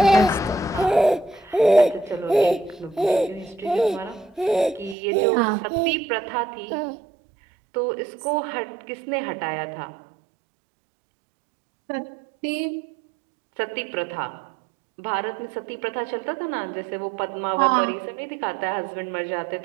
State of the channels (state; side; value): drops out; left; at 5.0 s